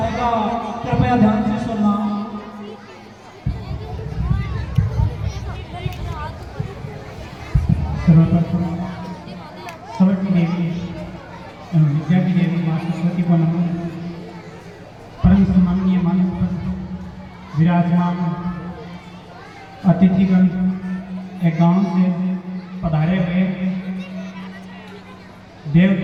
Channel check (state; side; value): identical; both; correlation 1.00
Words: कृपया ध्यान से सुनना। सर्वप्रथम सबकी देवी एवं विद्या की देवी माँ सरस्वती को नमन। परम सम्माननीय मानव पर विराजमान अतिथिगण एक गांव से पधारे हुए